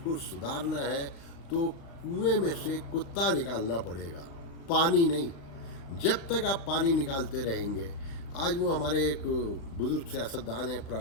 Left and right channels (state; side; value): late; right; 36 ms